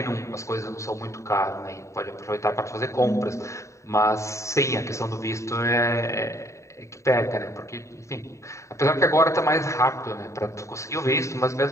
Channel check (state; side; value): late; right; 0.14 ms